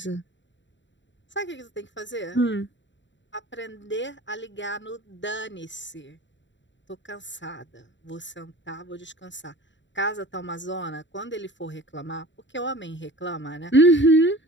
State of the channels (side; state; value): right; late; 0.54 ms